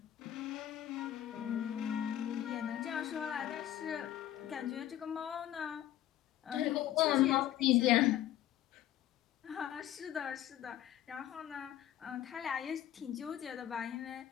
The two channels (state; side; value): quieter; right; 12.4 dB